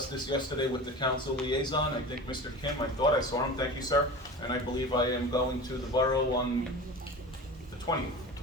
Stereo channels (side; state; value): both; normal; correlation 0.33